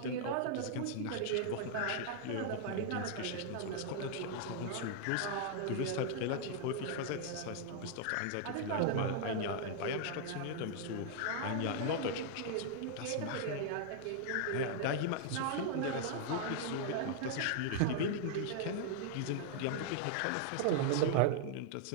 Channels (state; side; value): different; both; correlation -0.01